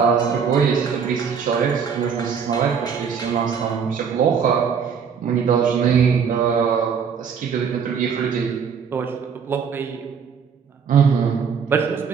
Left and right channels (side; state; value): left; quieter; 6.6 dB